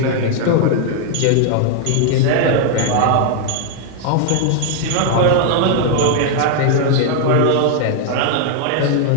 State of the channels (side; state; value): both; different; correlation 0.00